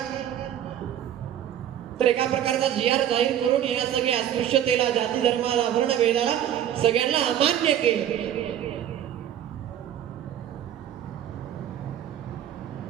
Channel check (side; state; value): left; quieter; 10.7 dB